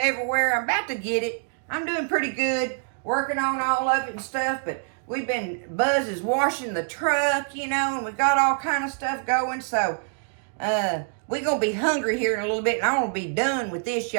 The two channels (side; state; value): left; silent; digital silence